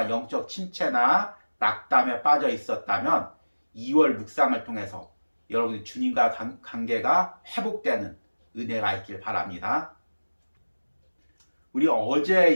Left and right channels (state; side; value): inverted; both; correlation -1.00